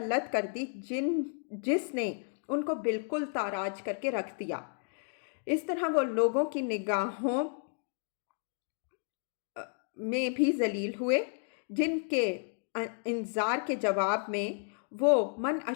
کر دی جس نے ان کو بالکل تاراج کر کے رکھ دیا۔ اس طرح وہ لوگوں کی نگاہوں میں بھی ذلیل ہوئے، جن کے انذار کے جواب میں وہ من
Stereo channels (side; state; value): right; silent; 56 dB below the other